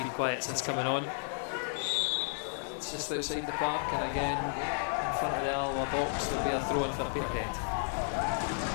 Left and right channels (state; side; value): silent; right; 56 dB below the other